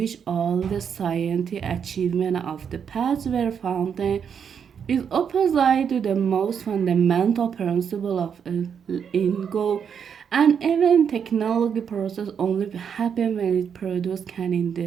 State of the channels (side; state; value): left; quieter; 7.4 dB